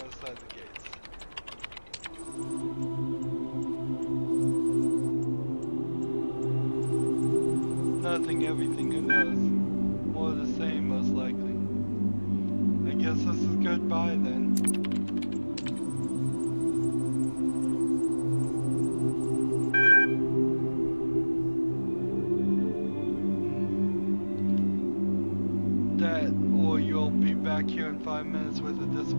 side of the gates? Nothing, everything, who knows? More of the same, most likely. I guess this is goodbye then. That, or you'll be back here in 5 minutes with a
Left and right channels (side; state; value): both; inverted; correlation -1.00